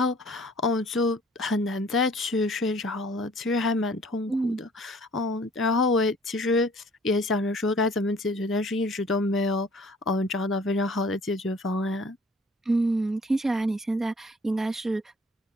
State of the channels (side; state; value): both; normal; correlation 0.55